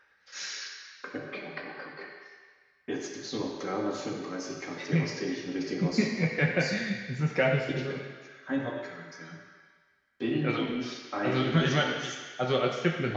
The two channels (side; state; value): both; identical; correlation 1.00